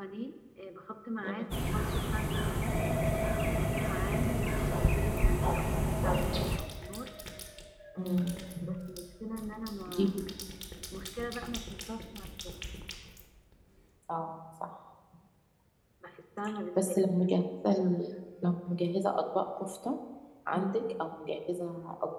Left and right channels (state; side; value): identical; both; correlation 1.00